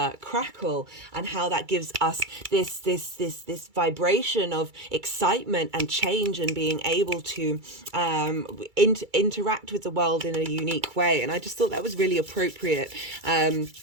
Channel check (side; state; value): left; late; 2.3 ms